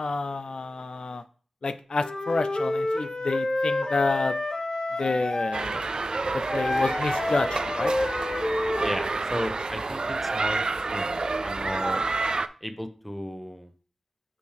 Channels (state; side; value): normal; both; correlation 0.93